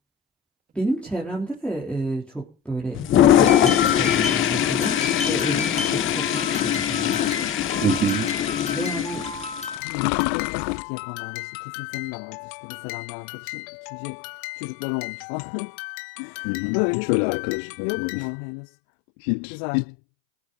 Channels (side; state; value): right; drops out; at 9.8 s